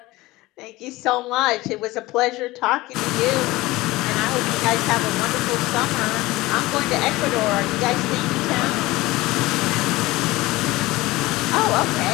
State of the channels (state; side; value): quieter; right; 19.6 dB